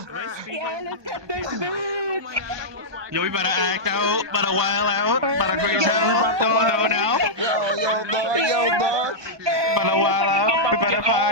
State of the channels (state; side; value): late; left; 1.2 ms